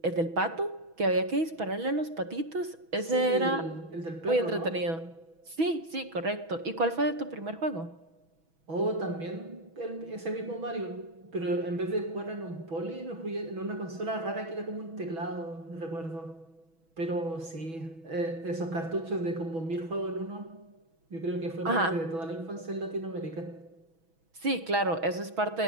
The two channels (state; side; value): late; left; 6.1 ms